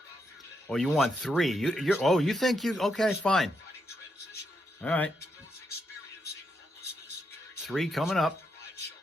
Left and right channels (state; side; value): normal; both; correlation 0.81